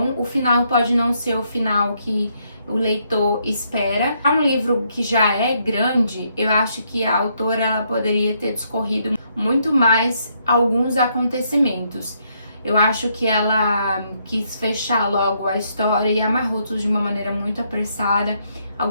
O final pode não ser o final que o leitor espera. É um livro que já é grande, eu acho que a autora ela poderia ter discorrido muito mais alguns acontecimentos. Eu acho que ela quis fechar logo a história e amarrou tudo de uma maneira muito apressada.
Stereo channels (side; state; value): both; inverted; correlation -0.74